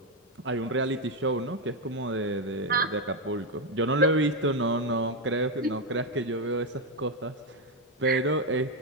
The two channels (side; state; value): both; normal; correlation 0.04